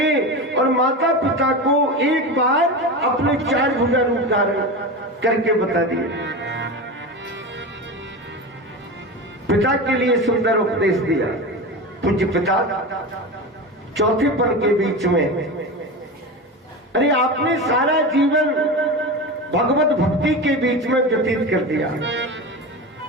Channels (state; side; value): normal; both; correlation 0.25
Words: और माता पिता को एक बार अपने 4 भुजा रूप धारण करके बता दिए। पिता के लिए सुंदर उपदेश दिया। पूज्य पिता चौथे पल के बीच में, अरे आपने सारा जीवन भगवत भक्ति के बीच में व्यतीत कर दिया,